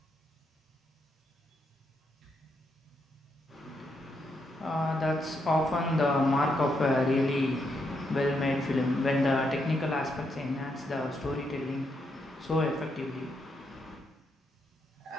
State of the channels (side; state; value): both; normal; correlation 0.79